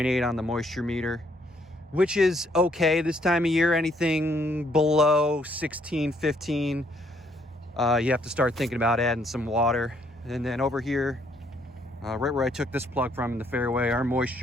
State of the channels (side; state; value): both; normal; correlation 0.69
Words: on the moisture meter, which is okay this time of year. Anything below 16, 15, you have to start thinking about adding some water. And then over here, right where I took this plug from in the fairway, our